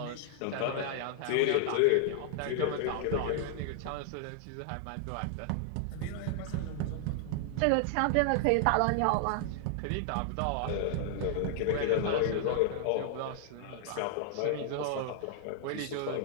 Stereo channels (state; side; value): different; both; correlation -0.01